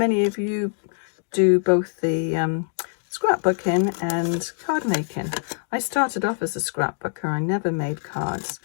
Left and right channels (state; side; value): silent; right; digital silence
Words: of you do both the scrapbooking and card making. I started off as a scrapbooker. I never made cards,